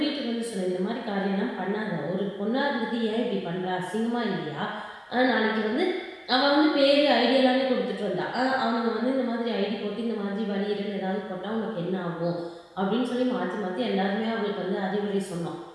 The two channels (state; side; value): identical; both; correlation 1.00